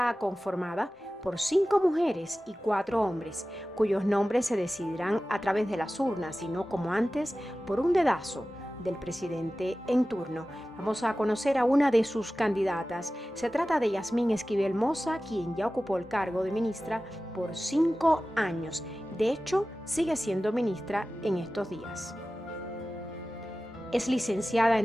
conformada por 5 mujeres y 4 hombres, cuyos nombres se decidirán a través de las urnas y no como antes por un dedazo del presidente en turno. Vamos a conocer a una de sus candidatas. Se trata de Yasmín Esquivel Moza, quien ya ocupó el cargo de ministra por 5 años. De hecho, sigue siendo ministra en estos días. Es licenciada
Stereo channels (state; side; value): normal; both; correlation 0.96